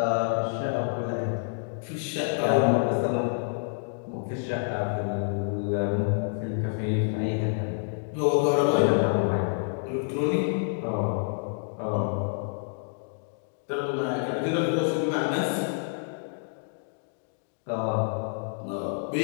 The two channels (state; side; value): silent; right; digital silence